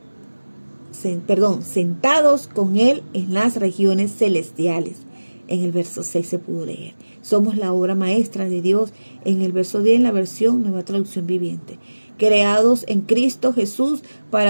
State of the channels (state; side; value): inverted; both; correlation -1.00